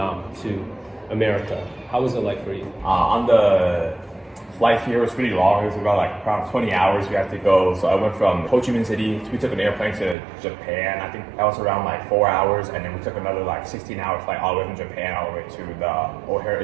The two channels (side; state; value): left; drops out; at 10.2 s